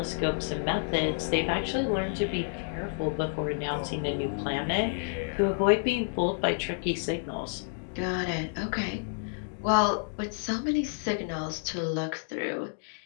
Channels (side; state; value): right; silent; digital silence